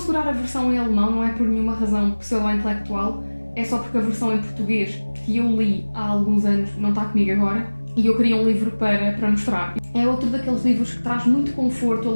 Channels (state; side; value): inverted; both; correlation -1.00